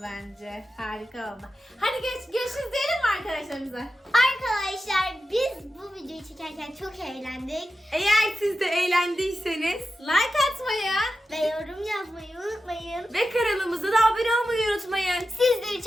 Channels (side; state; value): both; normal; correlation 0.91